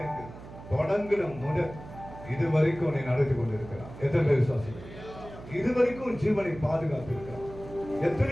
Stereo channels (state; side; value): noise; right; hum, 15 dB below the sound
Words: தொடங்கின முதல் இது வரைக்கும் உன்னை நடத்தி கொண்டிருக்கிறான். எத்தனை பேர் விசுவாசிக்கிறீங்க? இது வரைக்கும் ஜீவனை பாதுகாத்து இருக்கிறான்.